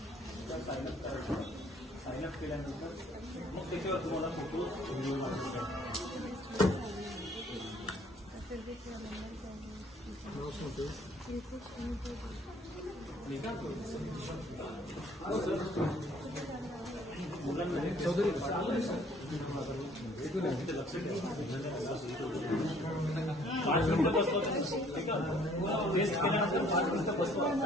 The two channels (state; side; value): normal; both; correlation 0.59